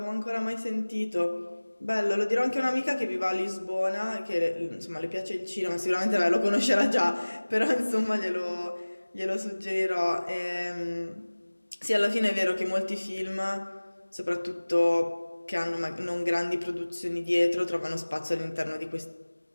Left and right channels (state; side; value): inverted; both; correlation -1.00